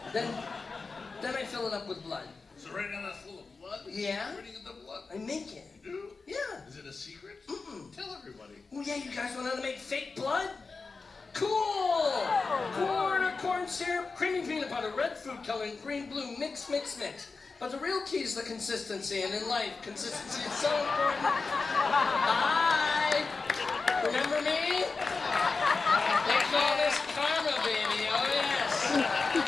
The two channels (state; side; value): quieter; right; 4.3 dB